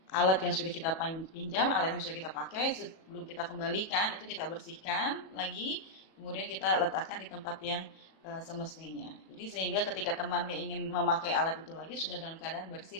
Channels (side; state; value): right; late; 37 ms